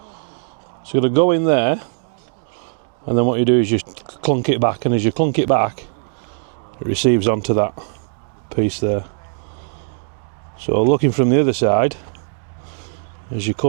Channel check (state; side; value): silent; left; digital silence